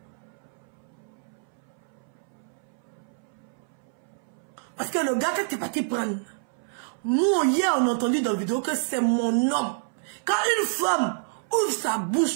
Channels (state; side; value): silent; left; 60 dB below the other